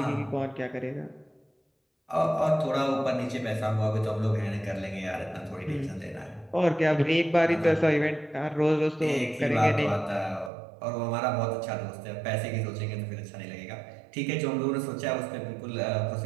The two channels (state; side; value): drops out; left; at 10.5 s